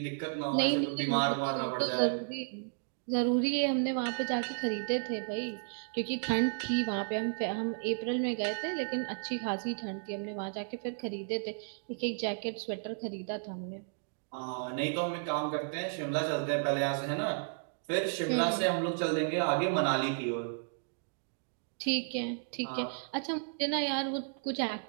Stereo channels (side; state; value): left; silent; digital silence